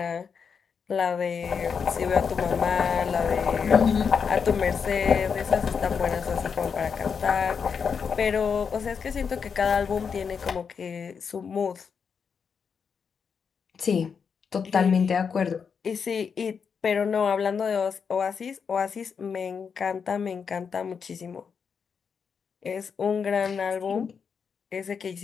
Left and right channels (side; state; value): right; quieter; 6.3 dB